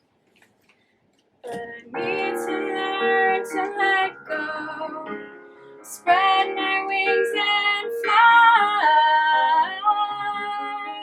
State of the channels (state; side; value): identical; both; correlation 1.00